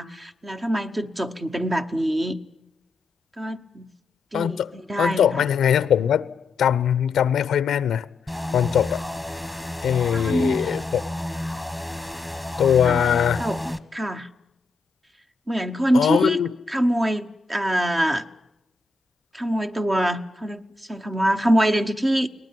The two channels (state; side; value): quieter; right; 3.5 dB